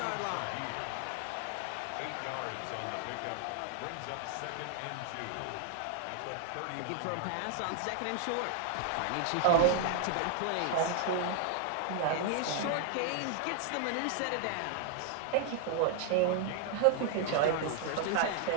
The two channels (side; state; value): both; different; correlation 0.00